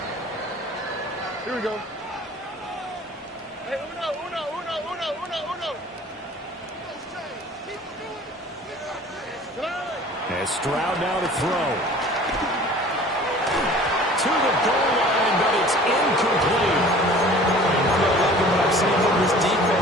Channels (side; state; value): both; normal; correlation 0.46